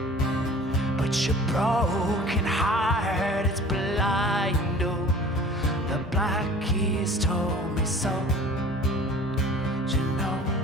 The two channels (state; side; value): normal; both; correlation 0.45